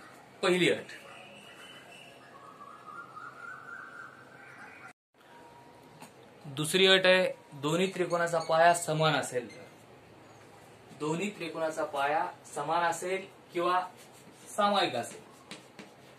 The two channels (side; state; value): both; identical; correlation 1.00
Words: पहिली अट. दुसरी अट आहे दोन्ही त्रिकोणाचा पाया समान असेल तर. दोन्ही त्रिकोणाचा पाया समान असेल किंवा सामायिक असेल.